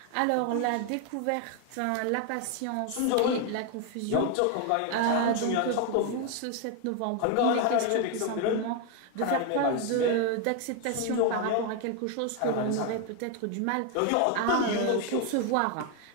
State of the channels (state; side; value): different; both; correlation 0.01